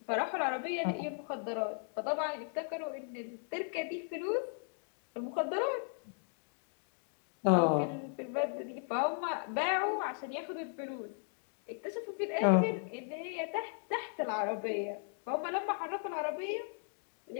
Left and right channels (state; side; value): silent; right; 53 dB below the other